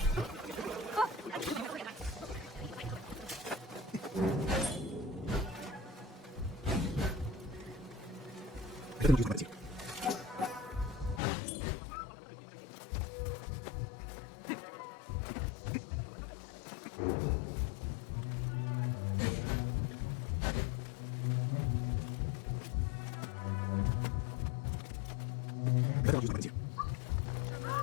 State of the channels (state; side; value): drops out; right; at 11.2 s